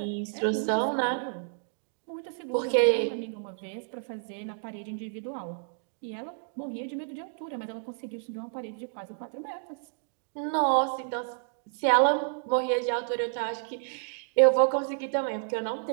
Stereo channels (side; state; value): left; silent; digital silence